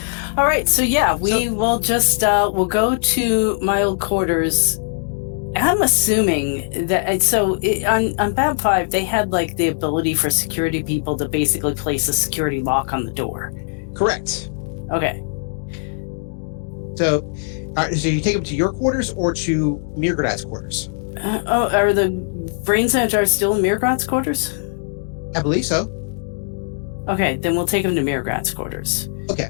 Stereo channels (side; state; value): right; silent; digital silence